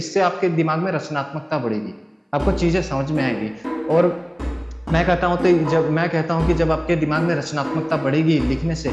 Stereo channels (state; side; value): identical; both; correlation 1.00